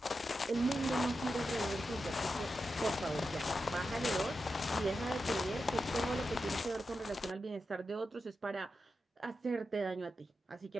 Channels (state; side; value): normal; both; correlation 0.89